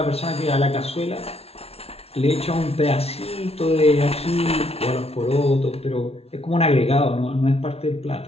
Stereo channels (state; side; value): late; right; 0.30 ms